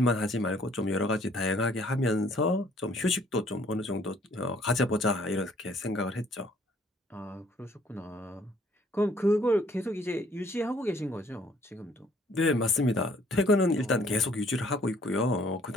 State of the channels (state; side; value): normal; both; correlation 0.61